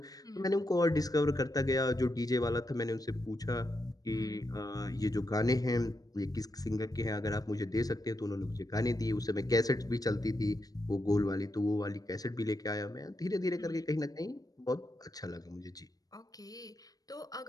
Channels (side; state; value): right; late; 0.18 ms